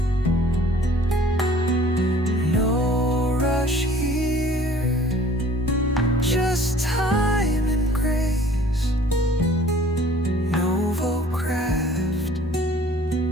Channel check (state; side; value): normal; both; correlation 0.52